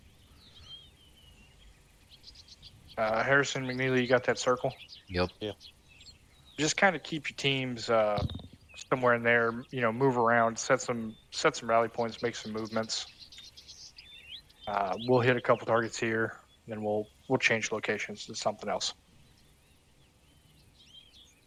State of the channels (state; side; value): identical; both; correlation 1.00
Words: Harrison, McNeely, you got that circle? Yep. Yeah. Just kind of keep your teams somewhere in there. Move around, set some rally points, make some movements. We'll hit a couple targets here, then we'll change locations to something else.